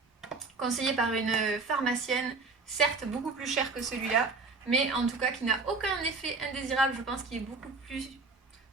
conseillé par une pharmacienne, certes beaucoup plus cher que celui-là, mais en tout cas qui n'a aucun effet indésirable. Je pense qu'il est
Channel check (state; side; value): quieter; left; 4.1 dB